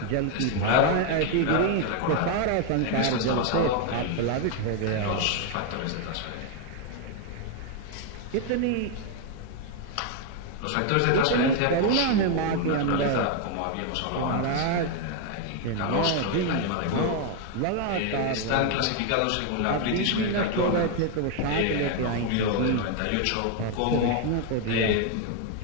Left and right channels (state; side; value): different; both; correlation 0.01